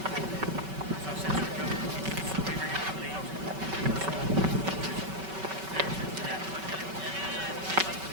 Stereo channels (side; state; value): left; late; 5.2 ms